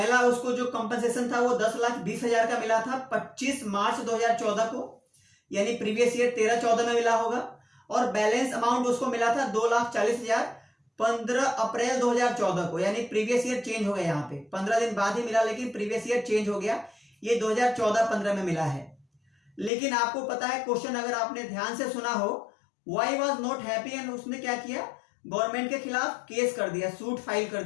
उसको जो कंपनसेशन था वो 10,20,000 का मिला था 25 मार्च 2014 को, यानी प्रीवियस ईयर 13-14 में मिला होगा। और बैलेंस अमाउंट उसको मिला था 2,40,000 15 अप्रैल 2014 को, यानी प्रीवियस ईयर चेंज हो गया। यहाँ पे 15 दिन बाद ही मिला, लेकिन प्रीवियस ईयर चेंज हो गया। ये 2014-15 में मिला है। लेकिन आपको पता है क्वेश्चन अगर आपने ध्यान से सुना हो, why was not happy, and उसने क्या किया? गवर्नमेंट के खिलाफ केस कर दिया, सूट फाइल कर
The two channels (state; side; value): drops out; right; at 19.7 s